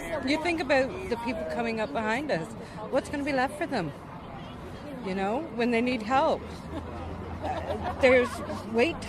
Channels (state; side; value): identical; both; correlation 1.00